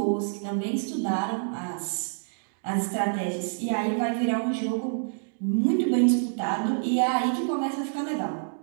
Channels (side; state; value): left; silent; digital silence